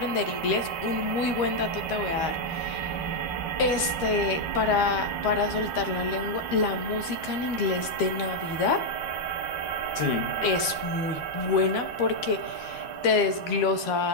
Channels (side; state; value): right; late; 13 ms